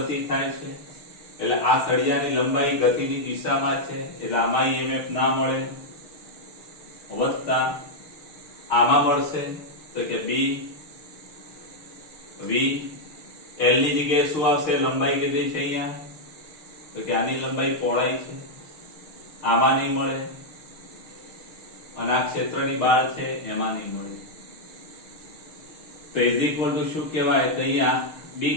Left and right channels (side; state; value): right; late; 6.6 ms